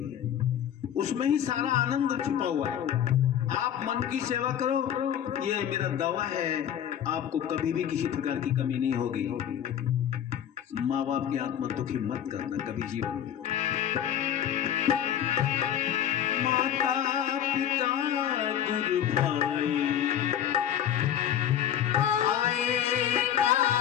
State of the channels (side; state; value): right; quieter; 10.0 dB